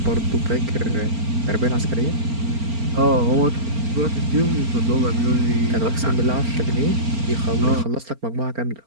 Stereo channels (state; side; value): late; left; 4.4 ms